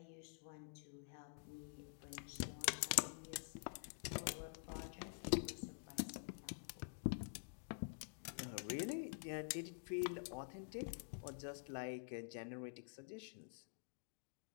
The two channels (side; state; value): right; silent; digital silence